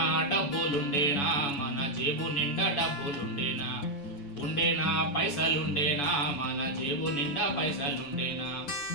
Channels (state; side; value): late; right; 7.0 ms